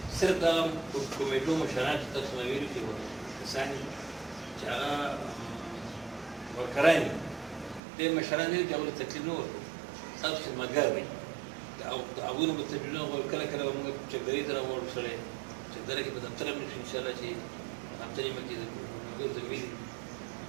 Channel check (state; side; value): drops out; left; at 7.8 s